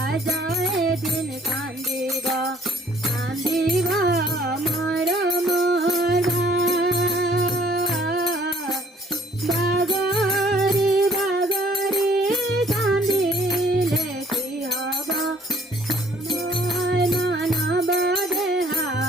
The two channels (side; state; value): both; normal; correlation 0.60